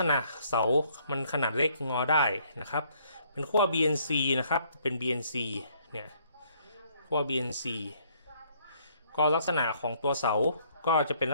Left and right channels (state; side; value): inverted; both; correlation -0.64